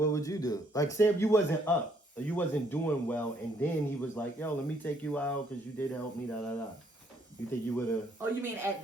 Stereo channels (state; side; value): normal; both; correlation 0.68